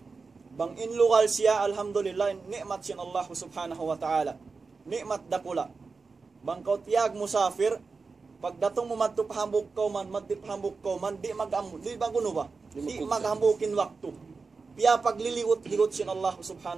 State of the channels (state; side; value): quieter; left; 4.5 dB